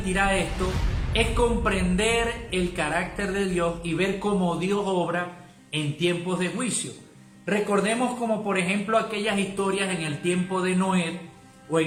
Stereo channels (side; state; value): both; identical; correlation 1.00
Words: esto, es comprender el carácter de Dios y ver cómo Dios obra en tiempos de juicio. Recordemos como por ejemplo aquellas historias en el tiempo de Noé o